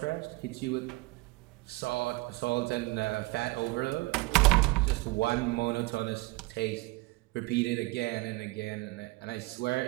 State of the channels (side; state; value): left; quieter; 23.0 dB